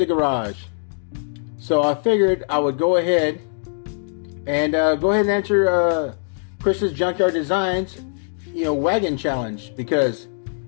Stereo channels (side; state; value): right; silent; digital silence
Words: garage. So I figured I would go ahead and answer Chris's Junkyard Designs, wagon challenge, because